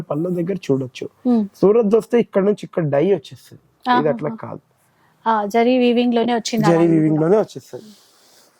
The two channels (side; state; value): both; identical; correlation 1.00